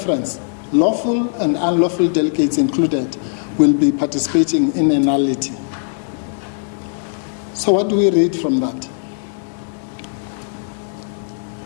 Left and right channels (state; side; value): silent; right; digital silence